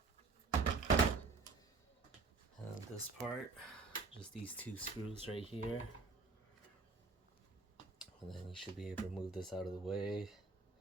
And this part, just these 2 screws right here. And then you should be able to move this out of the way.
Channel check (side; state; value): left; quieter; 4.1 dB